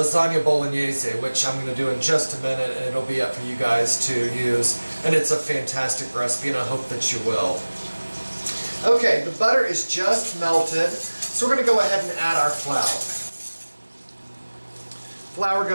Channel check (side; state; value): both; inverted; correlation -1.00